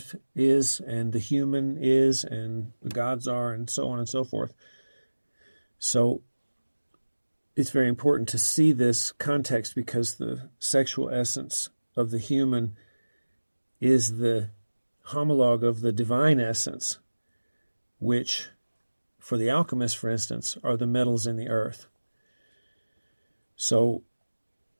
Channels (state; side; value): inverted; both; correlation -1.00